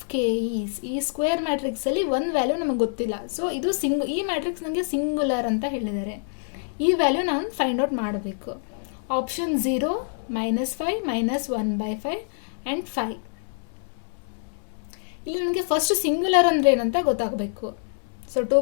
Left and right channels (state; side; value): silent; right; 61 dB below the other